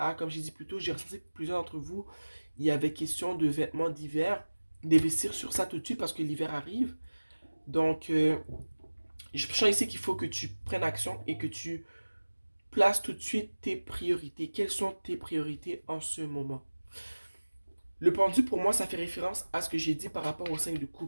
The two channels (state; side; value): inverted; both; correlation -1.00